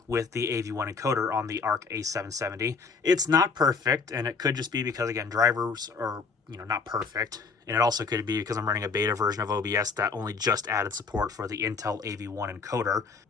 with the AV1 encoder on the Arc A770. It's not perfect, and it could just be because, again, drivers are, you know, not perfect. And it also could be because I'm running a beta version of OBS that only just added support for the Intel AV1 encoder.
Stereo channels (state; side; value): quieter; right; 4.9 dB